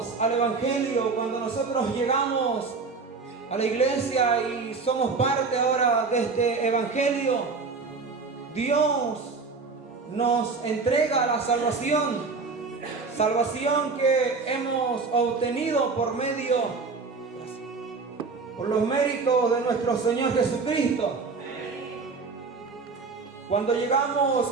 al Evangelio, cuando nosotros llegamos a la iglesia y somos parte ahora de este Evangelio, Dios nos entrega la salvación. Salvación que hemos obtenido por los méritos de nuestro Señor Jesucristo. Cuando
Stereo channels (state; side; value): quieter; left; 4.5 dB